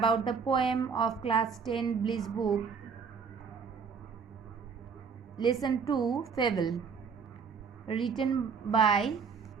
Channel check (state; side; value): quieter; left; 5.9 dB